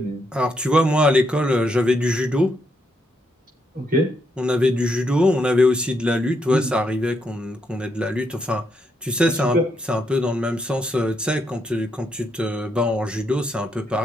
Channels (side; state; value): both; normal; correlation 0.78